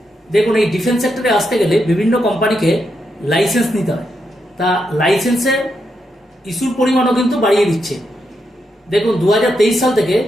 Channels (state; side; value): normal; both; correlation 0.83